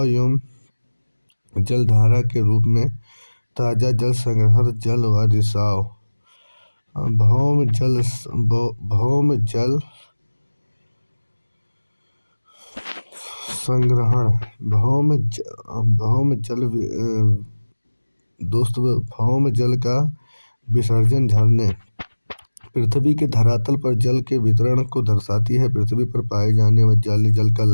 एवं जलधारा के रूप में ताजा जल संग्रहण, जल व रिसाव। भौम जल संग्रहण। भौम जल का विसर्जन, झरने। पृथ्वी के धरातल पर जल के वितरण को दर्शाती है। पृथ्वी पर पाए जाने वाले जल का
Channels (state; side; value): inverted; both; correlation -1.00